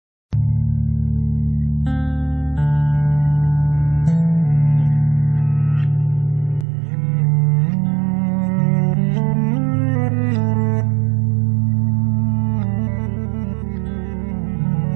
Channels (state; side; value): drops out; left; at 6.7 s